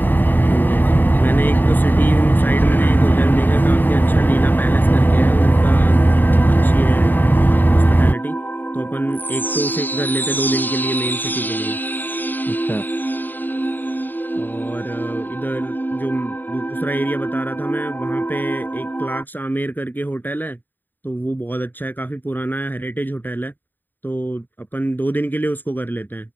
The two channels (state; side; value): late; right; 0.090 ms